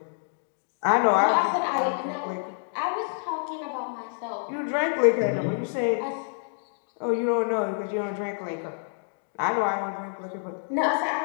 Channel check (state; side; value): silent; right; digital silence